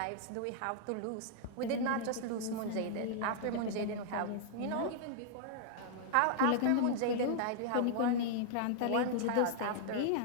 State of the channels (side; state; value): both; different; correlation -0.01